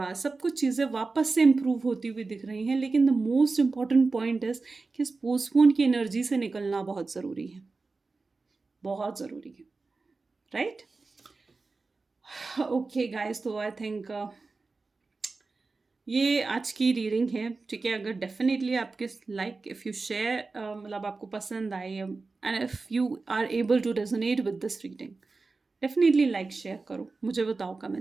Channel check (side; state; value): left; quieter; 3.9 dB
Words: सब कुछ चीज़ें वापस से इम्प्रूव होती हुई दिख रही हैं। लेकिन the most important point is कि इस पोस्टपोन की एनर्जी से निकलना बहुत ज़रूरी है, बहुत ज़रूरी है, राइट। ओके गाइस, तो आई थिंक ये आज की रीडिंग है, ठीक है। अगर डेफिनेटली आपके लाइक इफ़ यू शेयर, मतलब आपको पसंद आए, and if you are able to resonate with this reading, definitely like share करो, मुझे बताओ